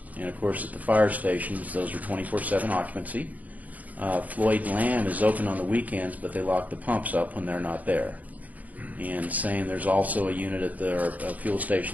and of course at the fire stations, those are 24/7 occupancy. Floyd Lamb is open on the weekends, but they lock the pumps up when they're not there. And same, there's also a unit at the fuel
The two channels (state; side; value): late; left; 0.076 ms